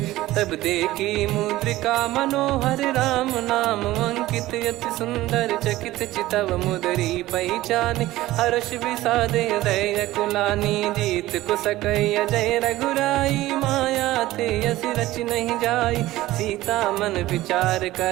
तब देखी मुद्रिका मनोहर। राम नाम अंकित अति सुंदर, चकित चितव मुदरी पहचान। हर्ष विषाद हृदय कुलानी, जीत को सकय अजय रघुराई। माया थे यस रच नहीं जाई, सीता मन विचार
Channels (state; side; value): quieter; left; 16.7 dB